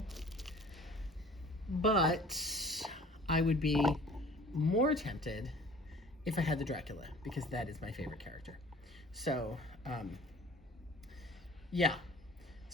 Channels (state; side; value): normal; both; correlation 0.48